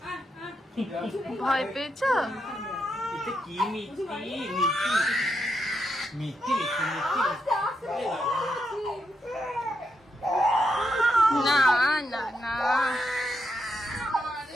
ভয় পেয়েছো? এটা কি মিষ্টি মিষ্টি মিষ্টি মিষ্টি না না না,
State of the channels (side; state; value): both; normal; correlation 0.82